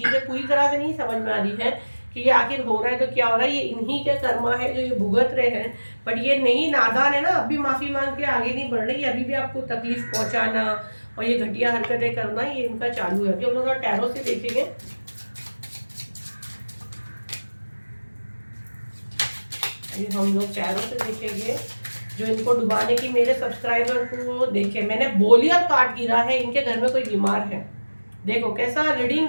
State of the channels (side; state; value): both; inverted; correlation -1.00